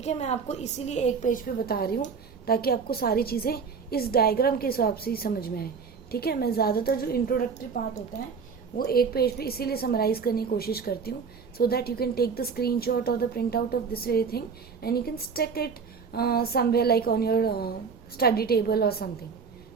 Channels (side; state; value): left; quieter; 5.7 dB